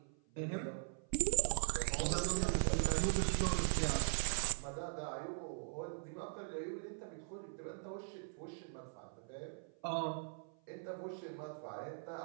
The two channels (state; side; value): silent; left; 51 dB below the other